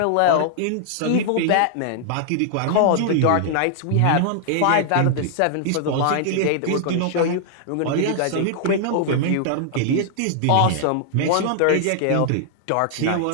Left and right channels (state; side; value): different; both; correlation -0.01